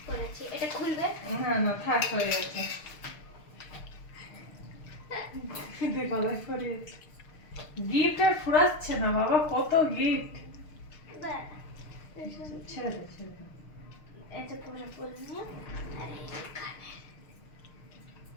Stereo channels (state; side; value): late; right; 6.6 ms